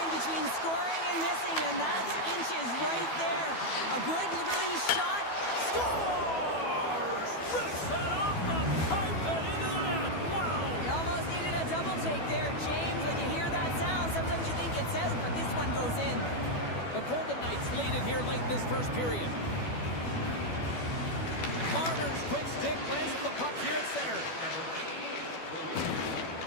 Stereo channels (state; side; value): late; right; 12 ms